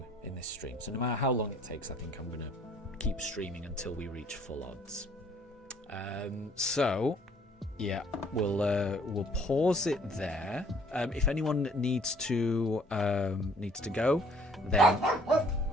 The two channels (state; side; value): normal; both; correlation 0.58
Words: in this stream. So no matter how long it takes, I think I'm going to keep streaming until we reach full odds. So Yeah, we'll pause it there. If anyone needs to go, then